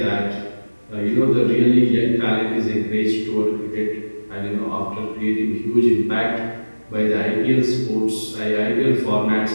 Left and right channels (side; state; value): both; inverted; correlation -1.00